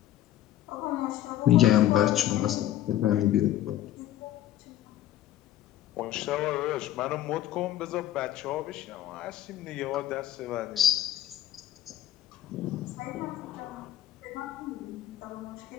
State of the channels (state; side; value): quieter; right; 12.8 dB